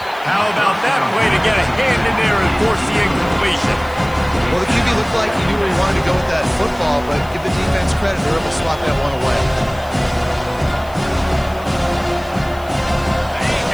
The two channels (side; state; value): left; noise; hiss, 24 dB below the sound